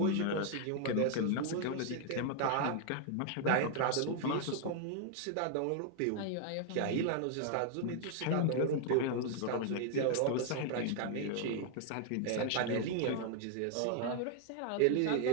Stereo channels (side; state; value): both; different; correlation 0.00